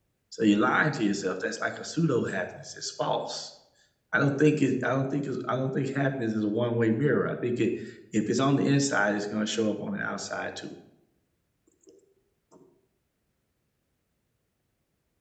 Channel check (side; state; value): both; identical; correlation 1.00